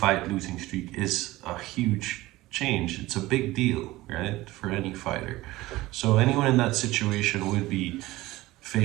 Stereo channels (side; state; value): left; quieter; 18.4 dB